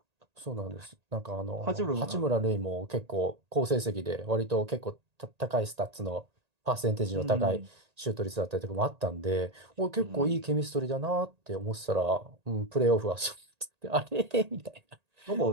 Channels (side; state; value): left; late; 1.8 ms